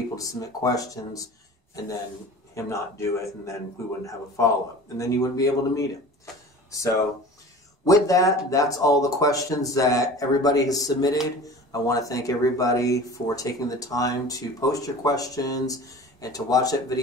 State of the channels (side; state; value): both; normal; correlation 0.40